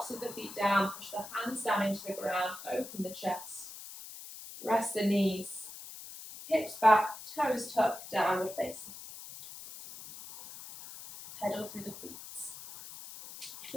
of the feet down, push the hands down into the ground, open the chest. Rest the knees, hips back, toes tucked, downward facing. Pedal through the feet.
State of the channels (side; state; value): left; noise; hiss, 13 dB below the sound